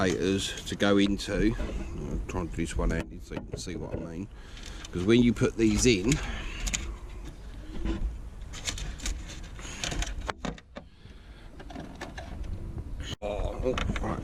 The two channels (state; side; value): identical; both; correlation 1.00